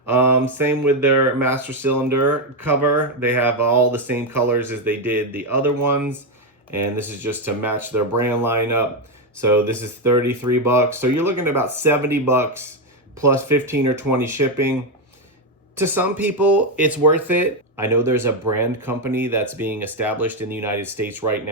Same with their master cylinder cover. They have all the same colors as they did the other ones. And this is just to match their brand lineup. So this is $33. So you're looking at about $70 plus 15 or 20 shipping. To some people, it's worth it. I know there's a brand company that's being established in the United States right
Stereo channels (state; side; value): normal; both; correlation 0.07